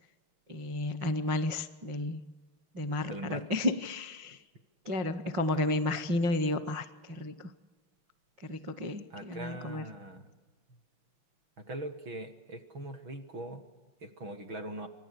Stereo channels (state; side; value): late; left; 5.6 ms